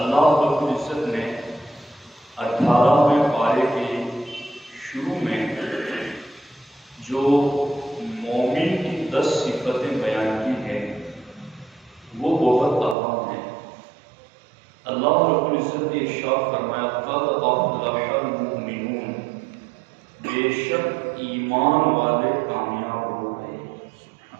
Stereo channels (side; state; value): left; drops out; at 13.0 s